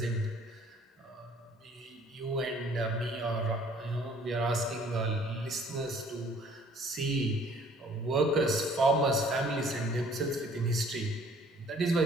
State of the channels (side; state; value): both; normal; correlation 0.57